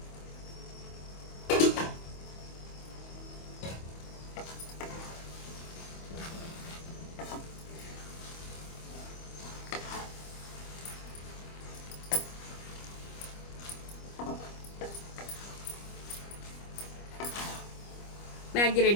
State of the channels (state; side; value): late; right; 25 ms